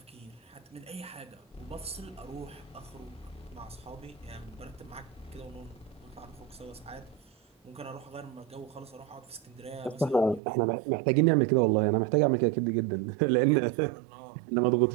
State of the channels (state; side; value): drops out; left; at 10.4 s